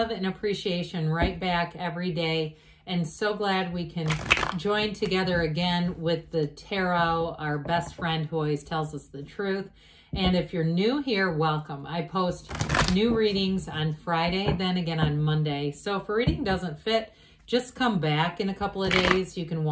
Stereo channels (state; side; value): identical; both; correlation 1.00